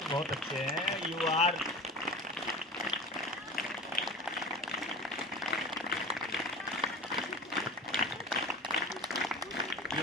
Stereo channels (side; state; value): both; normal; correlation 0.32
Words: बहुत अच्छे हैं। You